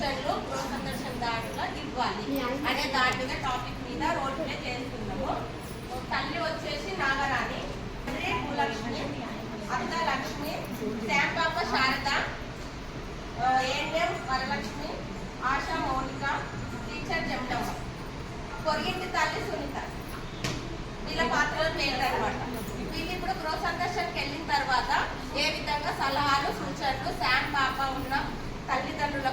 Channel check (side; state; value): both; identical; correlation 1.00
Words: గృహ సందర్శన దాంట్లో ఇవ్వాలి అనే దాని మీద టాపిక్ మీద రోల్ ప్లే చేస్తున్నాము. తల్లి వచ్చేసి నాగరాణి, భూలక్ష్మి, అత్త లక్ష్మి, శాంపాప శారద, ఏఎన్ఎం వరలక్ష్మి, ఆశా మౌనిక, టీచర్ జమలమ్మ, పొరిగింటి తల్లి సునీత. వీళ్ళ పాత్రలు పేరు అనమాట. వీళ్ళు ఇప్పుడు గృహ సందర్శనకి వెళ్ళిన తర్వాత ఏ విధంగా సలహాలు సూచనలు శామ్ పాప ఉన్న